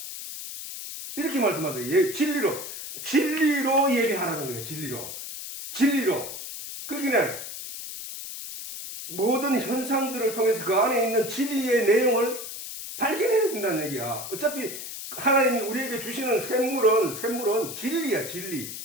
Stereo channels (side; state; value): left; noise; hiss, 9 dB below the sound